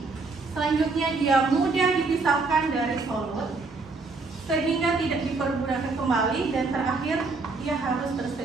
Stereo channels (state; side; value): quieter; left; 3.9 dB